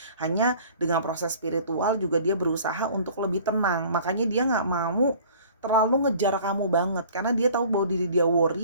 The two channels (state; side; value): inverted; both; correlation -0.49